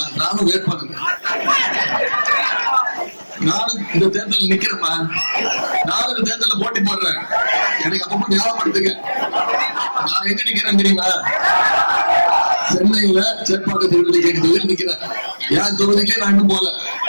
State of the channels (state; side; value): inverted; both; correlation -1.00